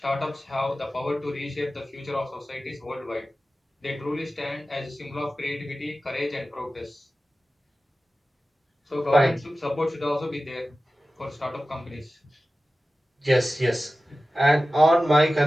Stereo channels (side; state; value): both; normal; correlation 0.95